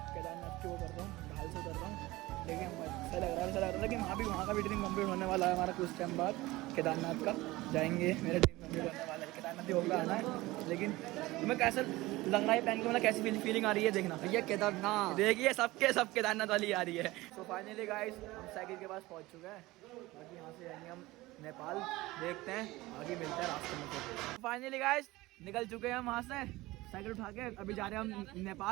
केदारनाथ क्यों कर रहा हूँ, ढाल से कर रहा हूँ, लेकिन ऐसा लग रहा है कि वहाँ का भी ड्रीम कम्प्लीट होने वाला है हमारा कुछ टाइम बाद। केदारनाथ का जाएंगे, मेरा ड्रीम कम्प्लीट होने वाला है, केदारनाथ ही होगा आना है। लेकिन तुम्हें कैसा लग रहा है पहन के, मतलब कैसी फीलिंग आ रही है? देखना भैया केदारनाथ, देखिए सब केदारनाथ वाली आ रही है। तो फाइनली गाइस हम साइकिल के पास पहुँच चुके हैं, बाकी यहाँ से जाएंगे हम नेपाल, देखते हैं आगे मिलता है रास्ते में। फाइनली गाइस निकल चुके हैं हम वहाँ से साइकिल उठा के, अभी जा रहे हैं हम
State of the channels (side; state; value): left; quieter; 19.5 dB